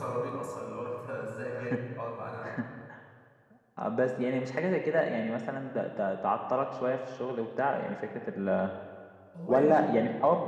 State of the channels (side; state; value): both; identical; correlation 1.00